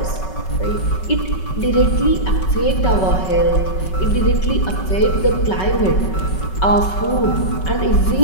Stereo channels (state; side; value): late; right; 5.3 ms